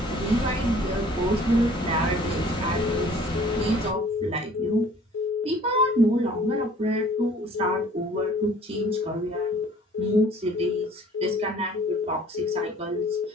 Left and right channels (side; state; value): both; normal; correlation 0.53